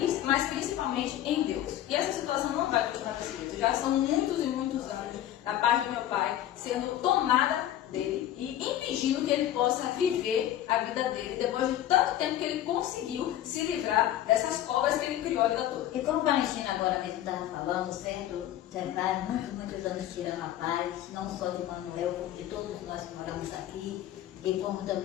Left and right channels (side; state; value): right; quieter; 12.4 dB